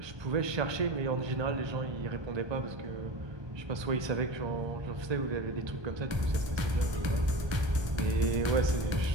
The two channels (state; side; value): late; left; 1.2 ms